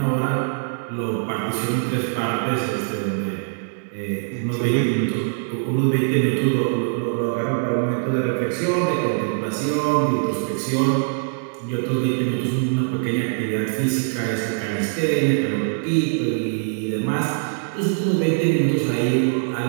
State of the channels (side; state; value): left; silent; digital silence